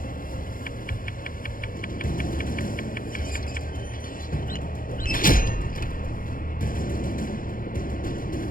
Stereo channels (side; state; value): right; late; 0.40 ms